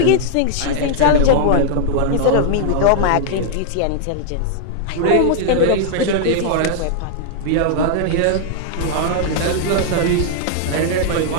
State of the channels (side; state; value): both; different; correlation -0.01